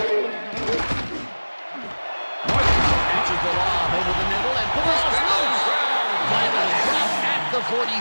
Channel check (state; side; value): inverted; both; correlation -1.00